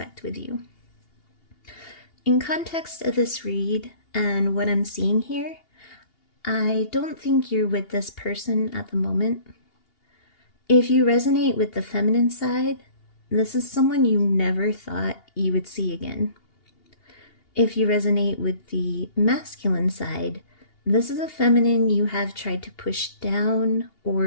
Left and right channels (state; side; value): late; right; 2.8 ms